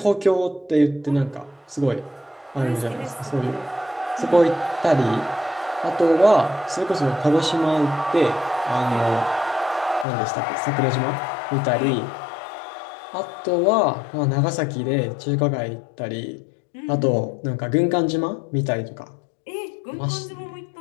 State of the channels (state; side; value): drops out; right; at 10.1 s